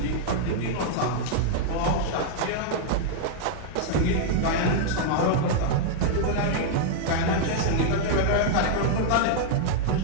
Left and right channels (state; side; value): different; both; correlation -0.01